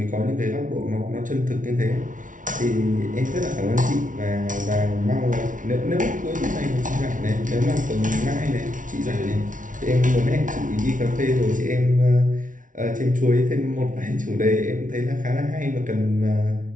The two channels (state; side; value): late; left; 0.38 ms